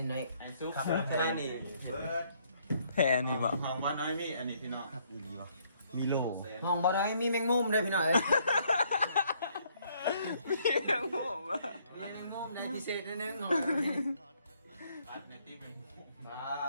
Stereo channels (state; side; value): inverted; both; correlation -0.67